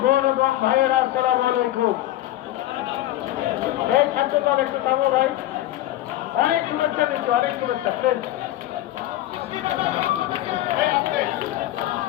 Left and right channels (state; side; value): quieter; right; 14.7 dB